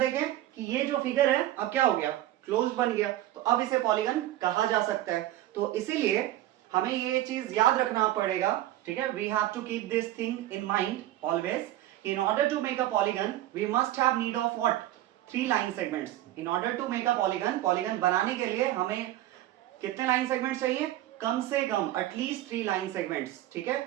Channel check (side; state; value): left; quieter; 14.3 dB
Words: कि ये जो फिगर है अब क्या हो गया, क्लोज बन गया, तो अब इसे पॉलीगन कहा जा सकता है। तो इसीलिए हमें ये चीज याद रखना पड़ेगा, ठीक है। We have to keep this thing in mind always. In order to make a polygon we must have need of what, 3 line segments. In order to make a polygon, polygon बनाने के लिए हमें कितने लाइन सेगमेंट्स चाहिए, कम से कम at least 3 line segments, ठीक है।